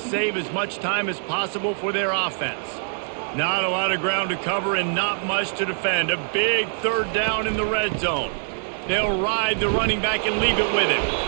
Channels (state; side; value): silent; left; digital silence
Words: as much time as possible for their offense. Not a lot of ground to cover and not much to defend. A big 3rd down in the red zone. They'll ride the running back and leave it with